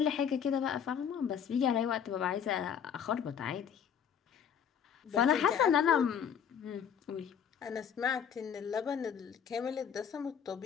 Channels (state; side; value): quieter; right; 8.0 dB